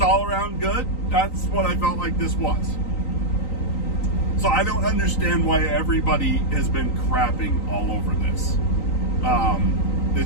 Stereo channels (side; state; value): right; late; 3.9 ms